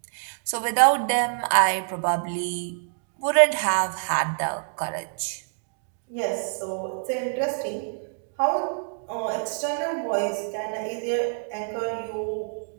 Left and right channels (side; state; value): left; silent; digital silence